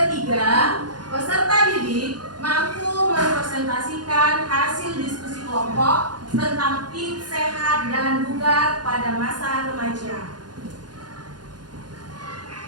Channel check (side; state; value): left; late; 0.70 ms